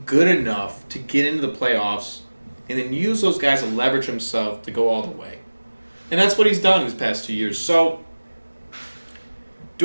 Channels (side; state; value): both; inverted; correlation -1.00